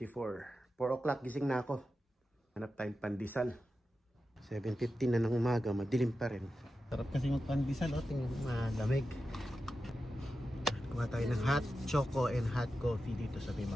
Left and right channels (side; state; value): both; normal; correlation 0.91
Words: 4 o'clock gising na ako. Hanap tayong pandesal. 7:15 na ng umaga, madilim pa rin. Sarap kasi magpandesal, oh, tingnan mo, malamig. Kuha tayo ng hot choco and hot coffee dito sa